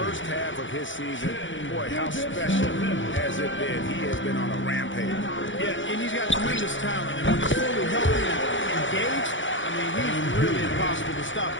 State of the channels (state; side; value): late; right; 0.56 ms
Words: half of his season, boy, how special has it been? He has been on a rampage. Yeah, and he's got tremendous talent. And when he's fully healthy and engaged, I mean, he's really impossible to stop.